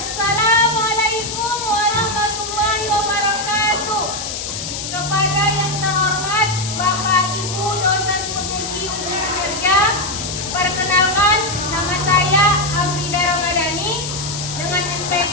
warahmatullahi wabarakatuh. Kepada yang terhormat Bapak Ibu dosen penguji ujian kinerja, perkenalkan nama saya Afrida Ramadhani dengan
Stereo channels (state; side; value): noise; left; hiss, 6 dB below the sound